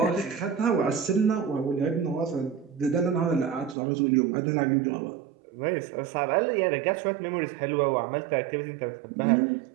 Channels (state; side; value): drops out; left; at 3.8 s